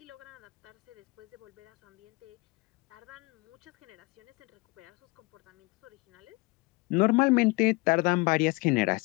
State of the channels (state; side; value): quieter; right; 25.3 dB